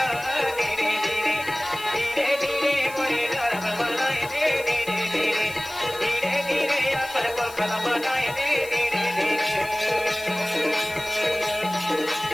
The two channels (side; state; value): left; noise; hiss, 16 dB below the sound